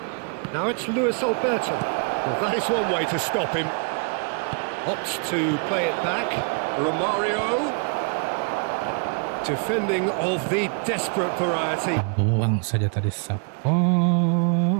Now it's Luis Alberto. Well, that is one way to stop him. Opts to play it back. Romario. Defending of the desperate variety. Buang saja tadi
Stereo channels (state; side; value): quieter; left; 39.9 dB